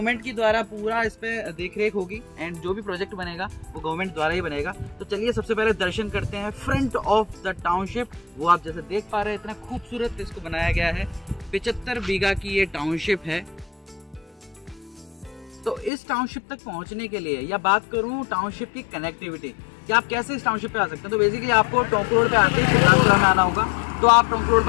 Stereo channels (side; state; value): right; drops out; at 15.9 s